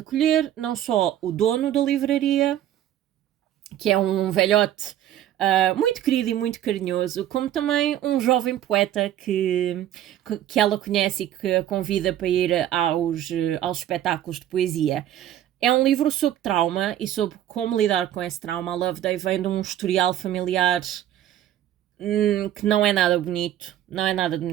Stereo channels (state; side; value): quieter; left; 11.9 dB